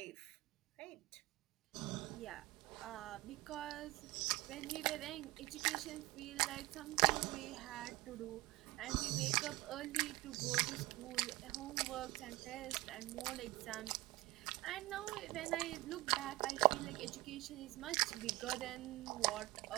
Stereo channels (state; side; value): quieter; left; 19.8 dB